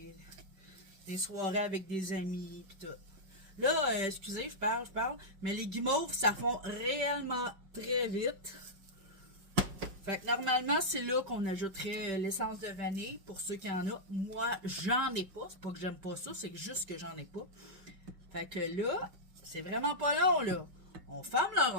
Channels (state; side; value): late; left; 5.1 ms